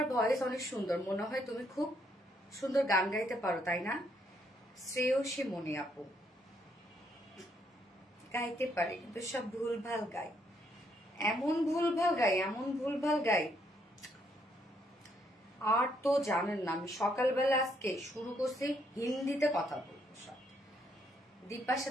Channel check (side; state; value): both; normal; correlation 0.72